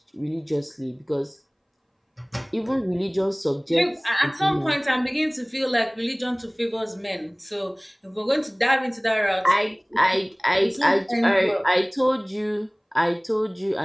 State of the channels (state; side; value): identical; both; correlation 1.00